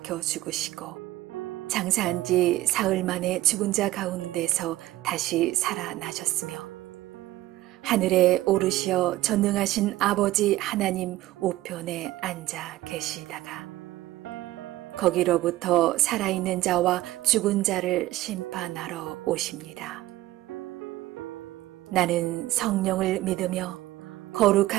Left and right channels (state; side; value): quieter; left; 16.4 dB